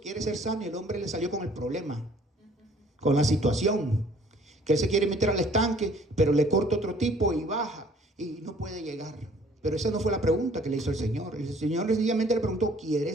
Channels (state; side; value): normal; both; correlation 0.56